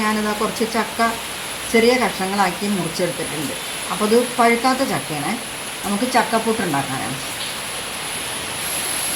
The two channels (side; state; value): both; identical; correlation 1.00